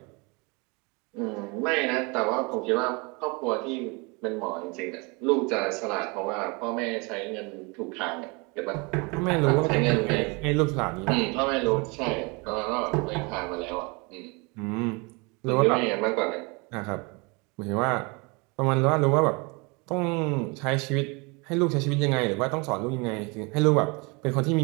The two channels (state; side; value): quieter; left; 29.1 dB